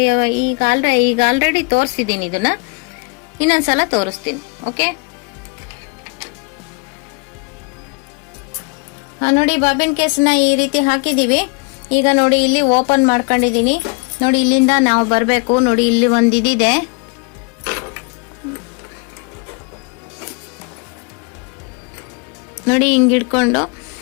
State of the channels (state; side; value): quieter; right; 32.1 dB